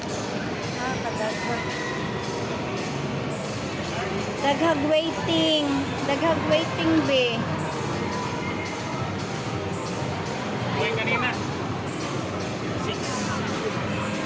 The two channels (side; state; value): both; identical; correlation 1.00